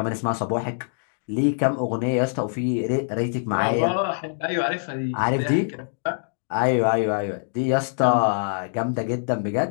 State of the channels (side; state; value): right; silent; digital silence